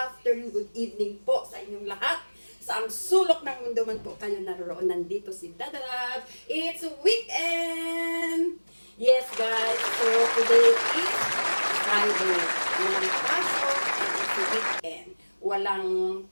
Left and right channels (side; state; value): both; inverted; correlation -1.00